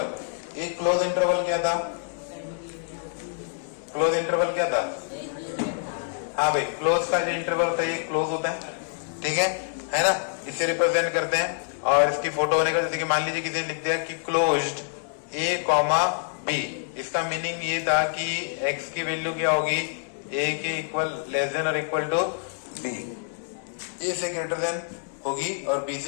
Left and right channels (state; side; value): silent; right; digital silence